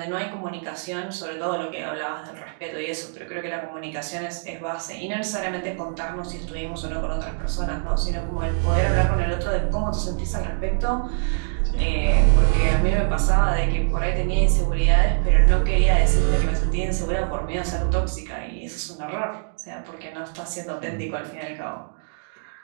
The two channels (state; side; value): silent; left; digital silence